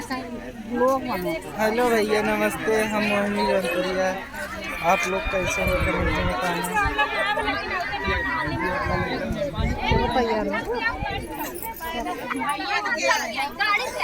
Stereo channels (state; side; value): identical; both; correlation 1.00